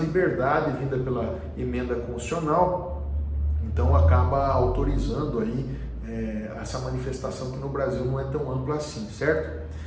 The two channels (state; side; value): identical; both; correlation 1.00